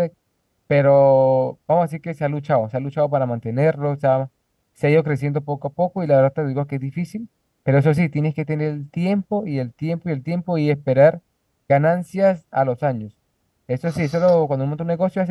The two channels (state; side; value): identical; both; correlation 1.00